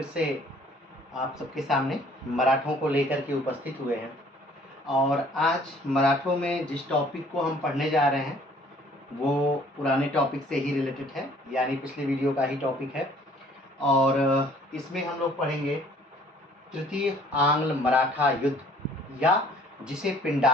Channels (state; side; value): normal; both; correlation 0.56